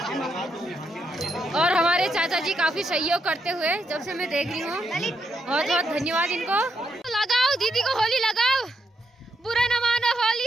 और हमारे चाचा जी काफी सहयोग करते हुए जब से मैं देख रही हूँ, बहुत बहुत धन्यवाद इनको। लगाओ दीदी को होली लगाओ, बुरा न मानो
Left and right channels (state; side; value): normal; both; correlation 0.80